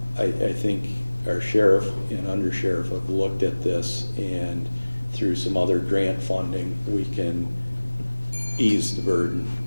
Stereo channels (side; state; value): both; inverted; correlation -1.00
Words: think our sheriff and undersheriff have looked at this, and through some other grant funding, we can ease the burden.